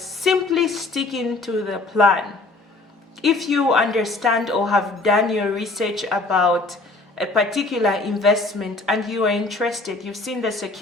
sticking to the plan. If you understand or have done your research about a particular investment and you are interested, you've seen the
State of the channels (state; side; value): quieter; right; 3.3 dB